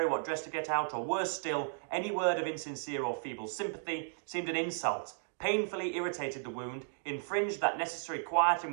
what dress to get out, or worse still, any word of insincere or feeble sympathy, seemed an insult, painfully irritated the wound, infringed that necessary quiet in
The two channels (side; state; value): left; silent; digital silence